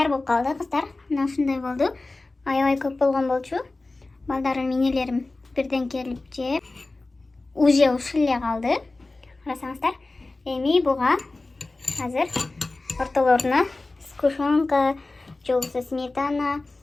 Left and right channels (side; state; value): right; quieter; 3.2 dB